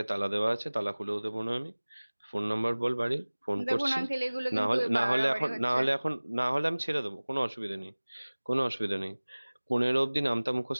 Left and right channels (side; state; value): both; inverted; correlation -1.00